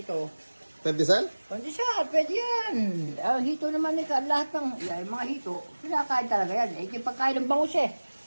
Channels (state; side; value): inverted; both; correlation -1.00